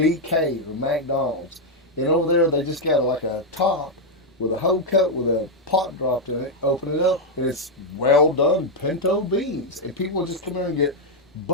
or McDonald's, and over there they just got like a top with a whole cut with a pot dropped in it, open it up, and it's well done pinto beans. And people just come in and get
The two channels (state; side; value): normal; both; correlation 0.00